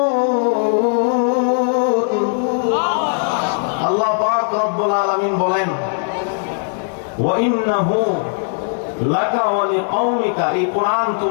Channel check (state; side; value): silent; right; 67 dB below the other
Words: আল্লাহ পাক রব্বুল আলামিন বলেন, ওয়াইন্নাহু লাকা ওয়া লিকাওমিকা, এই কোরআন